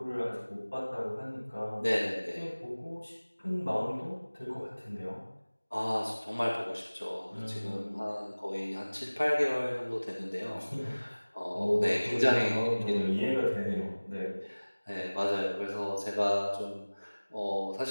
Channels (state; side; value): inverted; both; correlation -1.00